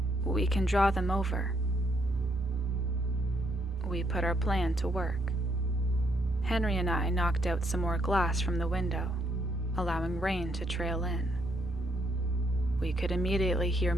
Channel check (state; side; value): normal; both; correlation 0.73